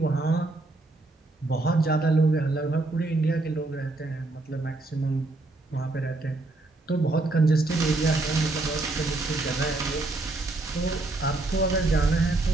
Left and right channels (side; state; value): left; quieter; 3.0 dB